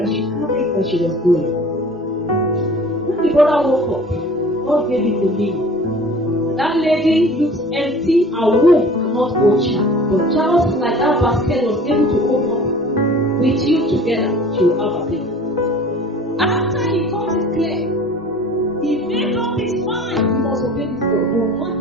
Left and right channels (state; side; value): normal; both; correlation 0.45